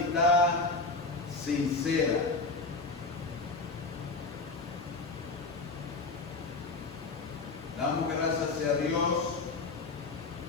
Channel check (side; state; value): right; quieter; 3.9 dB